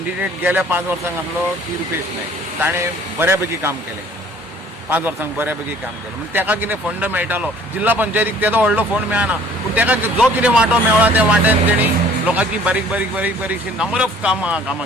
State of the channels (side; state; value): both; normal; correlation 0.54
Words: गेल्या 5 वर्सांक आसलो ती रुपेश नायक ताणें बऱ्यापैकी काम केलें, 5 वर्सांक बऱ्यापैकी काम केलें. म्हणजे ताका कितें फंड मेळटालो, जिल्हा पंचायतीक तेजो व्हडलो फंड मेळना, पूण ताका जो कितें वांटो मेळ्ळा त्या वाट्यान तेणी लोकांची बारीक बारीक बारीक बारीकशी नंबर ऑफ कामां